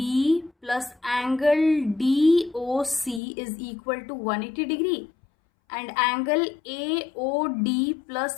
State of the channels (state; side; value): drops out; right; at 3.2 s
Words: plus angle DOC is equal to 180 degree and angle AOD